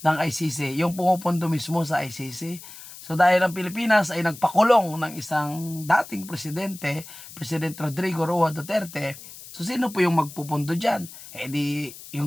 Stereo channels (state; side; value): noise; left; hiss, 16 dB below the sound